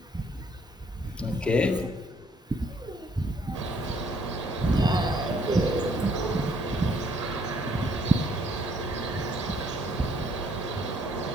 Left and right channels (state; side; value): normal; both; correlation 0.66